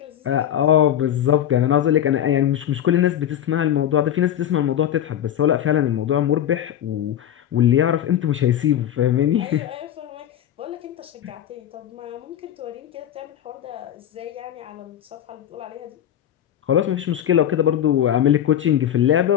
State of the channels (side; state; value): right; quieter; 10.6 dB